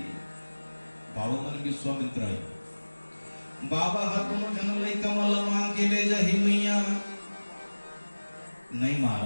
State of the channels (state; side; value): inverted; both; correlation -1.00